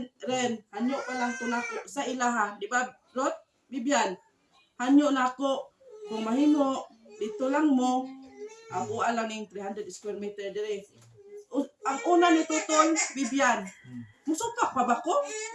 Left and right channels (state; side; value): identical; both; correlation 1.00